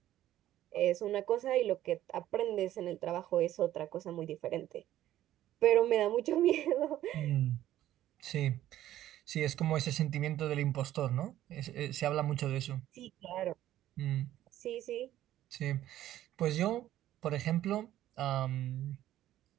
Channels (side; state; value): left; quieter; 13.2 dB